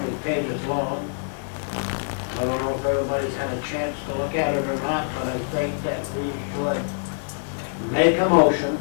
pages long. I don't know if everybody's had a chance to look at it or not, but I think that we should make a motion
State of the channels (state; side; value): silent; right; 62 dB below the other